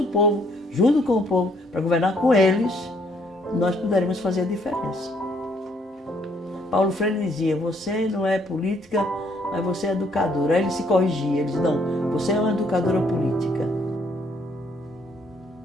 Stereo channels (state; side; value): normal; both; correlation 0.67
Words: povo, junto com o povo, para governar com eles, nós poderemos fazer a diferença. Paulo Freire dizia, você não é política, mas você é educadora. Aí ele se corrigia, ele dizia, não, você é uma educadora política.